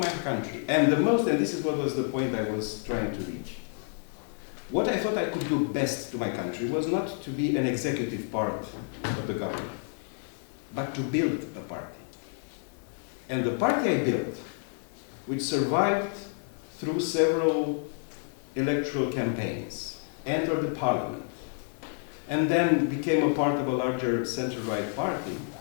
country. And the most, and this is what was the point I was trying to reach, what I thought I could do best to my country was not to be an executive part of the government, but to build a party. And the party I built, which survived through several electoral campaigns, entered the parliament, and then became a part of a larger center-right party,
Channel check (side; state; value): right; silent; 58 dB below the other